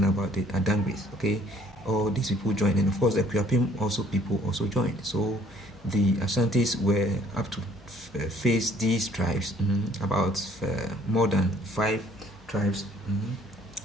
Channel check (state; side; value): normal; both; correlation 0.59